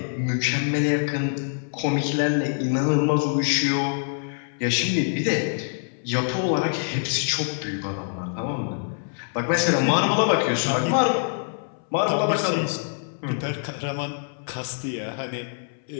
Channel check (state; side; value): silent; right; 62 dB below the other